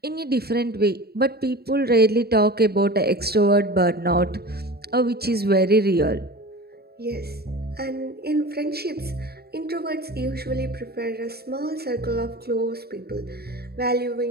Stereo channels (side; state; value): left; late; 0.46 ms